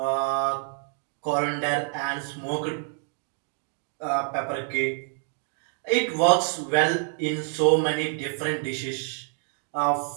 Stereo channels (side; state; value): left; silent; 60 dB below the other